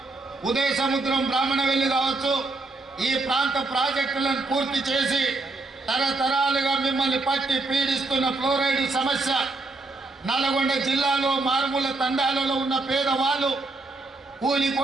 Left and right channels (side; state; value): left; quieter; 3.3 dB